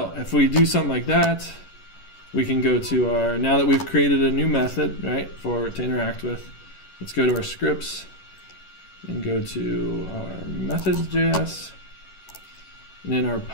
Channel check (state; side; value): late; right; 11 ms